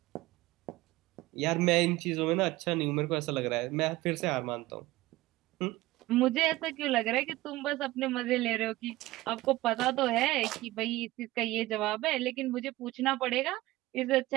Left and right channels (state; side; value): quieter; left; 18.4 dB